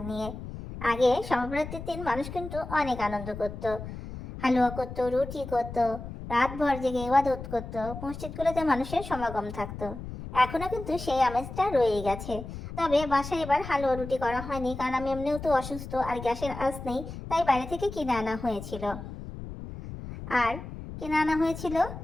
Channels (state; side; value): noise; left; rumble, 10 dB below the sound